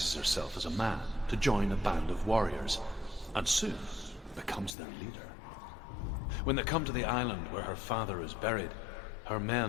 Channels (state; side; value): drops out; right; at 4.8 s